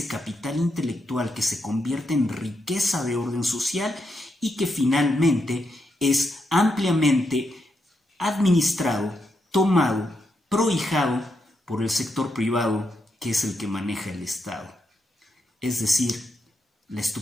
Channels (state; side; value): normal; both; correlation 0.82